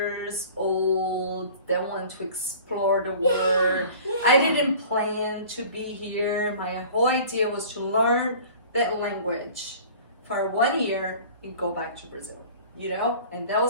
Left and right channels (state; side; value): inverted; both; correlation -0.45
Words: old that want to explore the world. I didn't plan to be here. My whole idea was to learn that language for 1 year and go back to Brazil, you know? And that